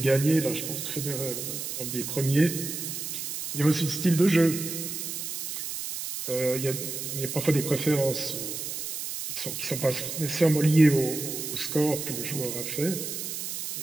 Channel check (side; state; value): right; noise; hiss, 5 dB below the sound